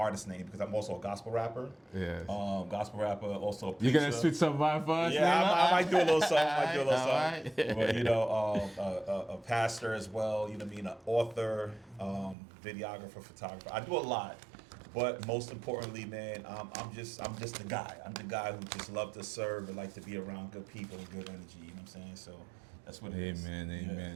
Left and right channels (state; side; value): drops out; left; at 12.4 s